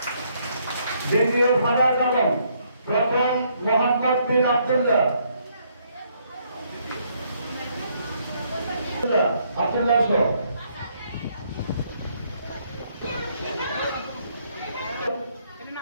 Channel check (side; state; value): both; inverted; correlation -0.70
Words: দ্বিতীয় ফারাজ আলম, প্রথম মোহাম্মদ বিন আব্দুল্লাহ। আব্দুল্লাহ সহ